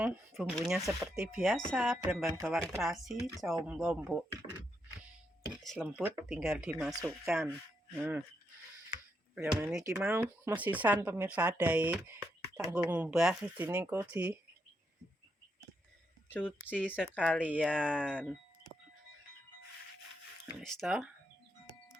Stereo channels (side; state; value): both; normal; correlation 0.81